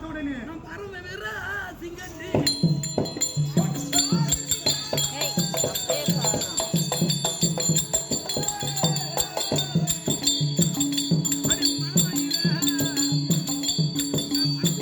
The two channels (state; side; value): identical; both; correlation 1.00